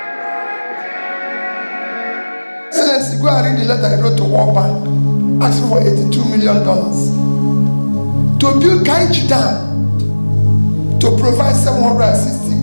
Go and read the letter I wrote to World Bank asking for $82 million to build Kainji Dam to provide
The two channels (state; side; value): inverted; both; correlation -1.00